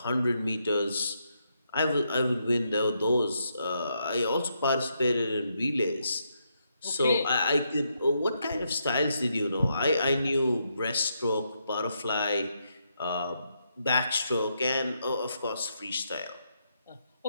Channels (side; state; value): both; inverted; correlation -0.80